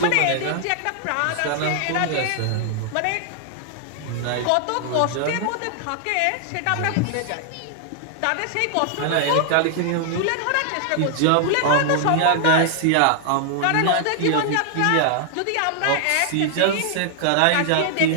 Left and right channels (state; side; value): different; both; correlation 0.00